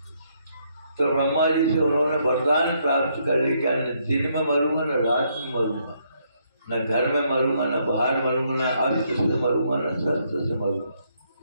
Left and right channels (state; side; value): inverted; both; correlation -0.73